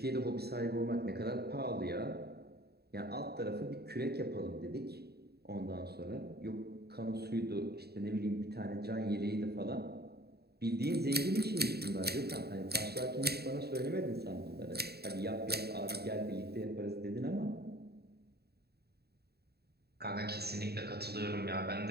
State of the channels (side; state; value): left; late; 0.47 ms